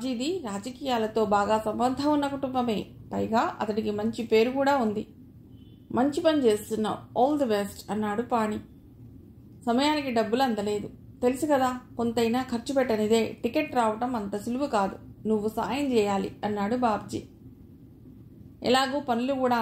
రాజకీయాలతో బాగా సంబంధం ఉన్న కుటుంబమే. పైగా అతడికి మంచి పేరు కూడా ఉంది. మంచి పని చేస్తున్నావు, ఆల్ ది బెస్ట్ అన్నాడు పాణి. సమయానికి డబ్బులు అందలేదు. తెలుసు కదా, కొంతైనా ఖర్చు పెట్టనిదే టికెట్ రావటం అంత సులువు కాదు. నువ్వు సాయం చేయాలి అన్నాడు బాబ్జీ. ఎలాగూ పనులు కూడా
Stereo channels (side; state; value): both; identical; correlation 1.00